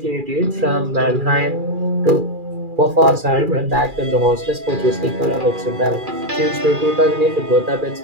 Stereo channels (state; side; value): late; left; 2.4 ms